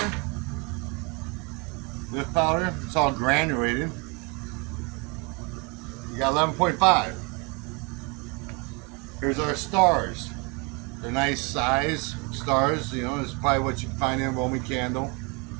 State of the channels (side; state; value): left; quieter; 30.1 dB